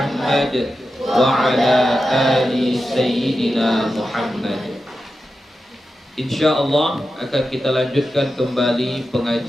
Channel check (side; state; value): both; normal; correlation 0.91